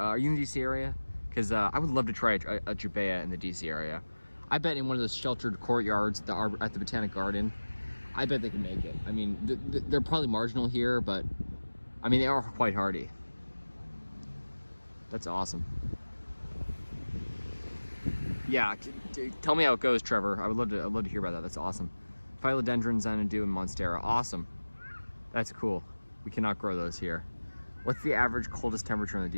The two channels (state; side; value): inverted; both; correlation -1.00